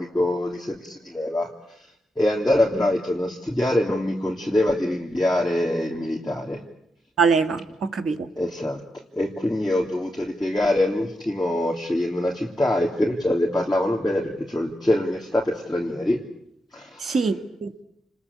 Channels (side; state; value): both; normal; correlation 0.86